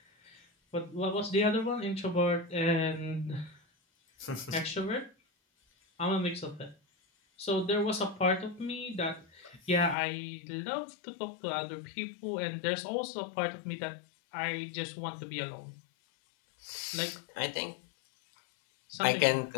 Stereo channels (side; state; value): right; drops out; at 10.0 s